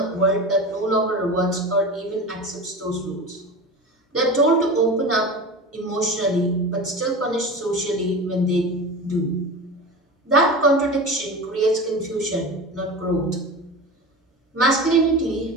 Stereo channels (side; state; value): both; normal; correlation 0.30